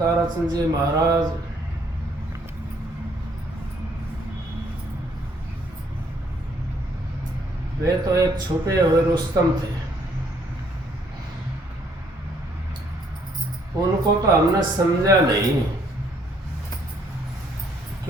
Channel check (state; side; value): normal; both; correlation 0.66